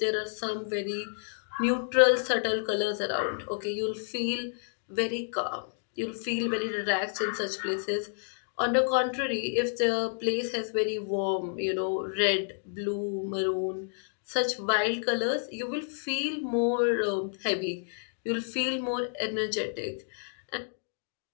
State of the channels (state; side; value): silent; right; digital silence